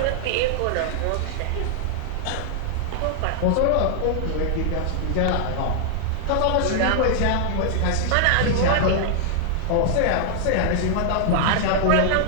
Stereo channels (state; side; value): different; both; correlation -0.01